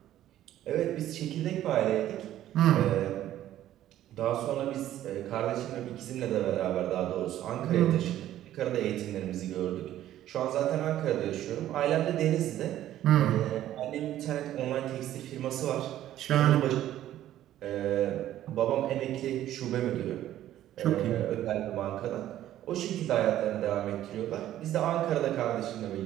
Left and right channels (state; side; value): quieter; left; 12.8 dB